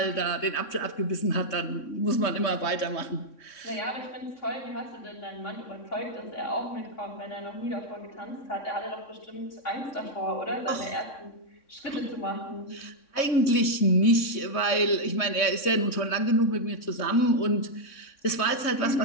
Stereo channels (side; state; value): right; late; 3.6 ms